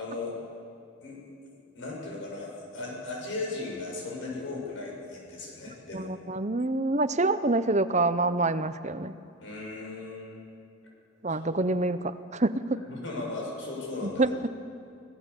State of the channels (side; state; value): both; normal; correlation 0.23